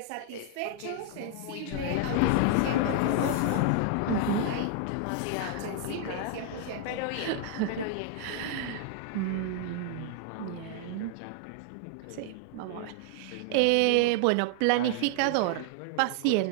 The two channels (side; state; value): both; different; correlation 0.00